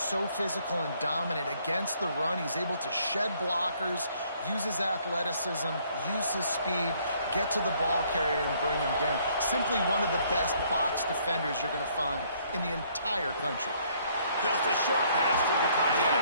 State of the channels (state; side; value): inverted; both; correlation -0.64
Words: so physical and dominant against the run. He's able to shed blockers, use his athleticism, use his speed, get to the ball carrier and bring him down. Simply one of the best box defenders you're going to find in the entire country. Just a short pass to the tight